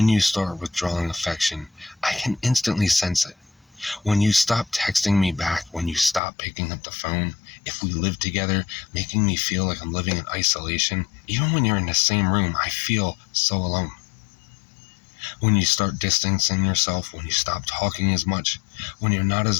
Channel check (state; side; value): drops out; right; at 6.2 s